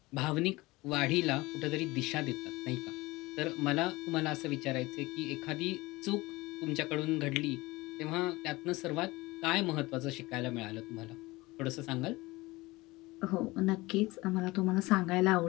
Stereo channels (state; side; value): quieter; right; 21.1 dB